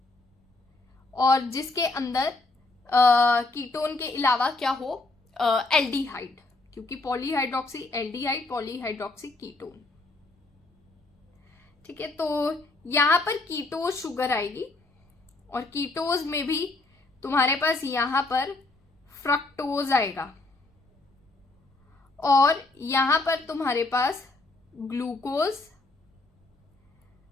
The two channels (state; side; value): quieter; right; 3.2 dB